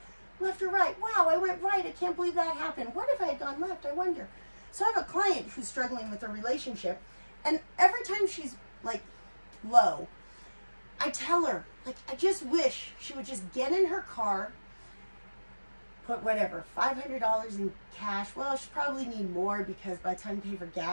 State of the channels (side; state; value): both; inverted; correlation -1.00